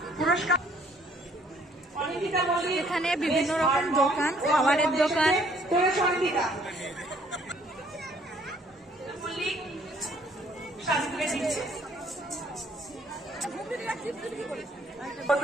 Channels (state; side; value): normal; both; correlation 0.62